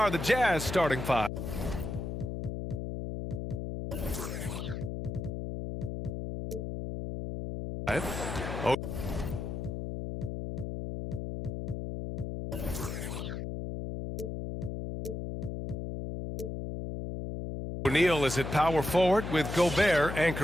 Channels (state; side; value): noise; left; hum, 5 dB below the sound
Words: the Jazz starting five. O'Neal is at power forward with Gobert